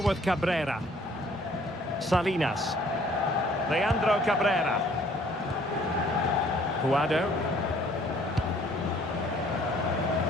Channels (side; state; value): both; normal; correlation 0.58